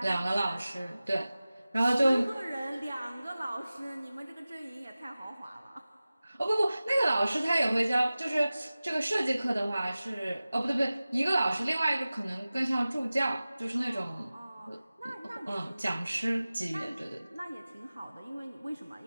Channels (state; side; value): inverted; both; correlation -0.97